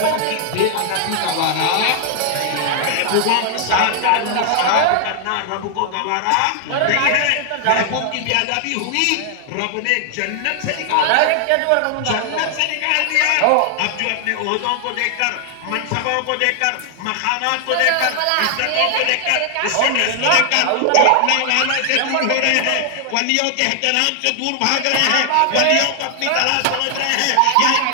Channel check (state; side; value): different; both; correlation 0.00